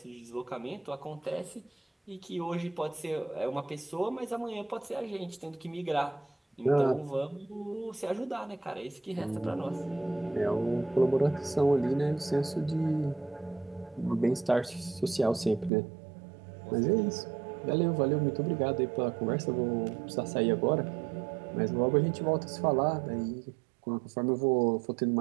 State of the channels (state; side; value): drops out; left; at 15.7 s